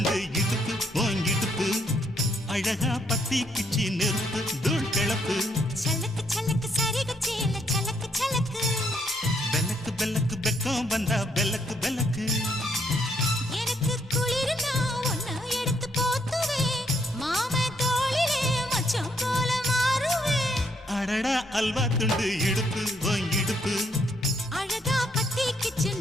இடுப்பு ஓன் இடுப்பு அழகா பத்தி கிச்சி நெருப்பு தூள் கிளப்பு சலக்கு சலக்கு சரிக சேல சலக்கு சலக்கு பெலக்கு பெலக்கு பெக்கம் வந்தா பெலக்கு பெலக்கு எனக்கு குளிர்னா ஒன்ன எடுத்து போத்துவே மாமே தோளிலே மச்சம் போல மாறுவே அடடா அல்வா துண்டு இடுப்பு ஓன் இடுப்பு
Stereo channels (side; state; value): both; normal; correlation 0.72